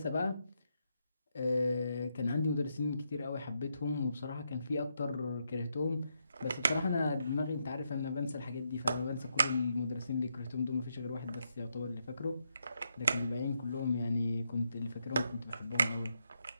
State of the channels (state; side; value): inverted; both; correlation -0.80